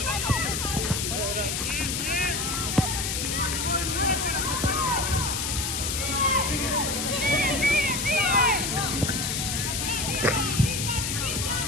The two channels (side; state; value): left; noise; hiss, 1 dB below the sound